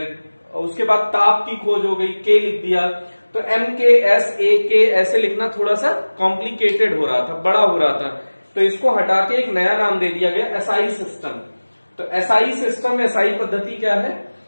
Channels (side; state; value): both; inverted; correlation -1.00